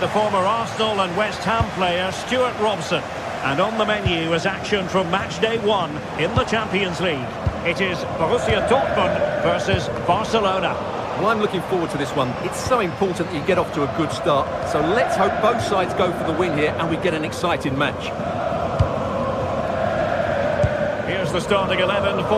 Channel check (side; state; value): both; identical; correlation 1.00